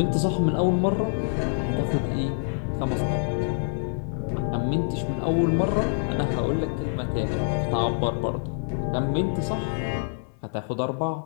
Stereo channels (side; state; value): right; silent; 61 dB below the other